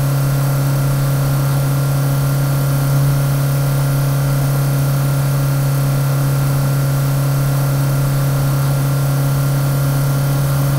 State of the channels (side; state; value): both; identical; correlation 1.00